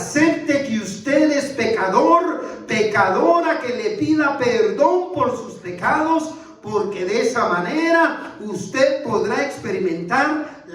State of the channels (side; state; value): both; identical; correlation 1.00